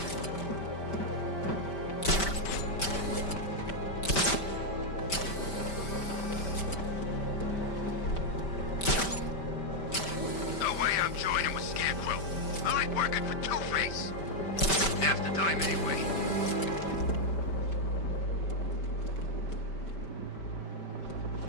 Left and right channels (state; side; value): late; right; 5.1 ms